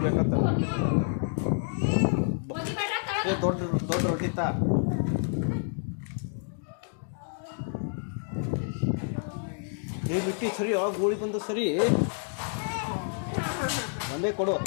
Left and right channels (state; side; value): silent; right; 59 dB below the other